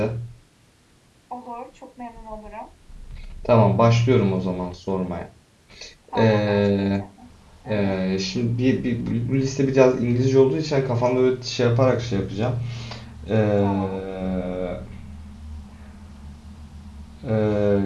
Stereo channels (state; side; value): identical; both; correlation 1.00